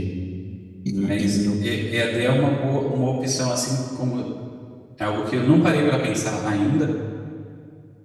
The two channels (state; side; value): identical; both; correlation 1.00